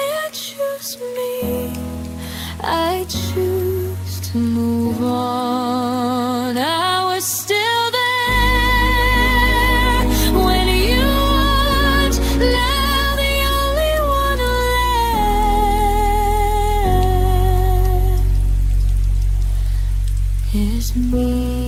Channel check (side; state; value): both; identical; correlation 1.00